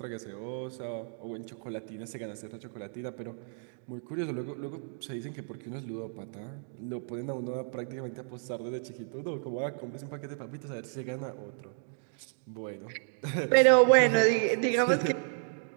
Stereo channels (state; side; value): silent; left; digital silence